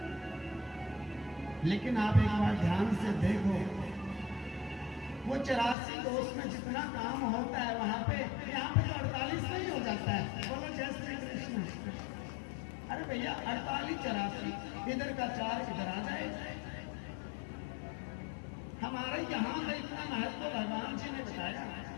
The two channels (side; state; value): right; drops out; at 5.8 s